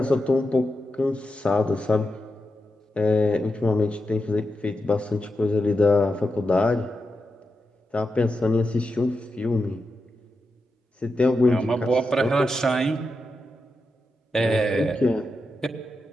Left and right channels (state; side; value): normal; both; correlation 0.88